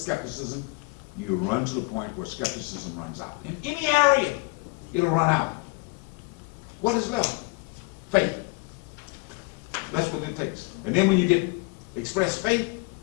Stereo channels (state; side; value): quieter; right; 26.7 dB